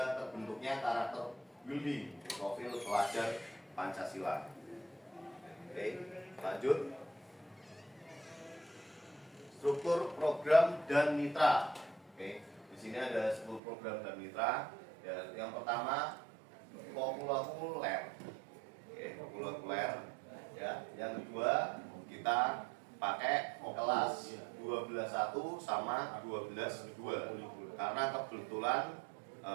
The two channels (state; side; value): drops out; left; at 13.6 s